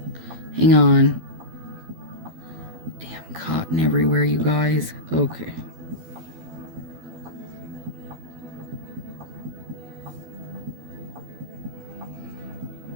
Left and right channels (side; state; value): left; late; 12 ms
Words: Hang on. Damn cotton everywhere, you guys. Okay.